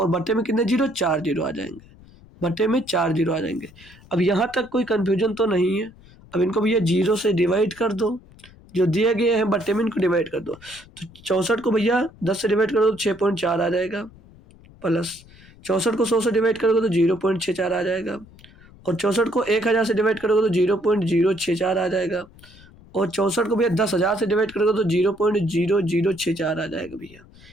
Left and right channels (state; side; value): noise; left; rumble, 24 dB below the sound